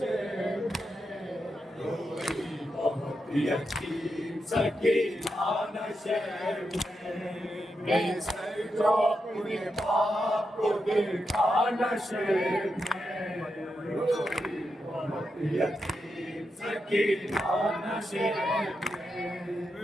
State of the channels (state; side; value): normal; both; correlation 0.86